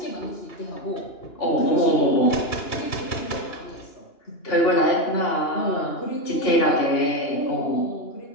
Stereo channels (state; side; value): late; right; 2.9 ms